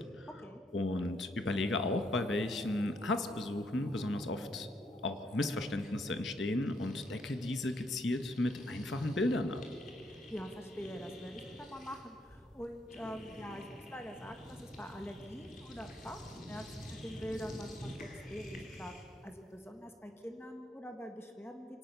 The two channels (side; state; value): both; normal; correlation 0.74